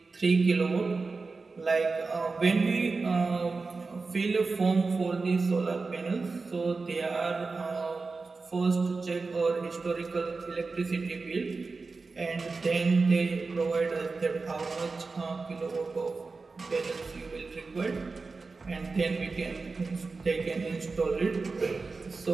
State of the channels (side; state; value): left; quieter; 4.1 dB